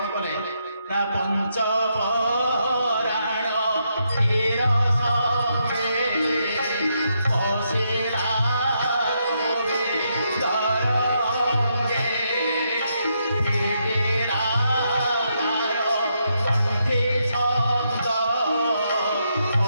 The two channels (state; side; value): inverted; both; correlation -0.79